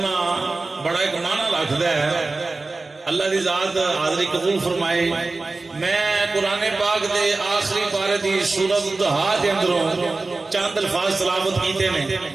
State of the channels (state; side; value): quieter; left; 3.5 dB